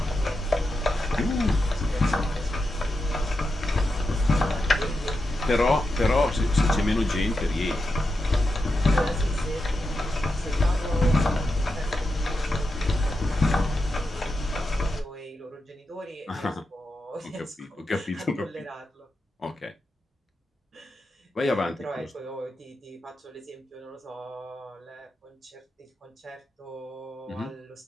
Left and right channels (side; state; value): both; normal; correlation 0.88